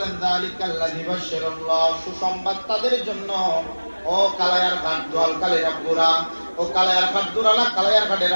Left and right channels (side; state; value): both; inverted; correlation -1.00